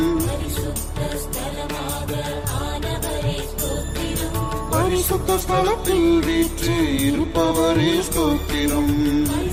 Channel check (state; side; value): identical; both; correlation 1.00